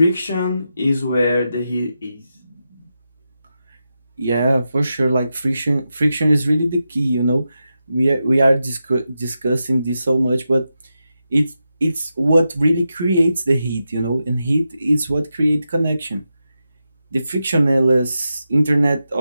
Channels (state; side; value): inverted; both; correlation -0.88